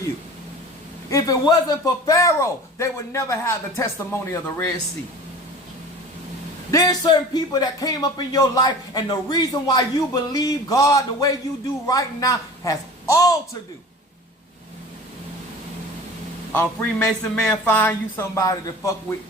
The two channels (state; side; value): normal; both; correlation 0.39